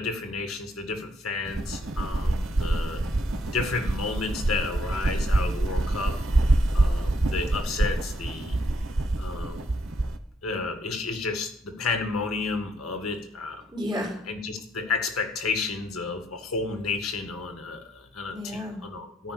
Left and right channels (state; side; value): normal; both; correlation 0.72